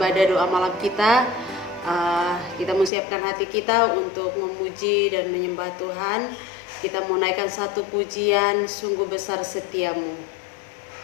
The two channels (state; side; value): drops out; right; at 2.9 s